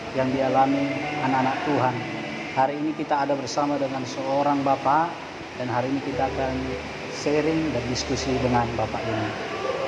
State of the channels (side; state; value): both; identical; correlation 1.00